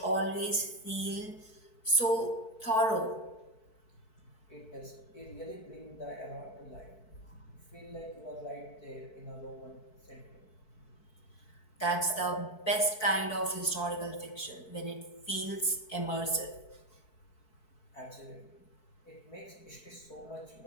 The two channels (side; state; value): right; late; 4.6 ms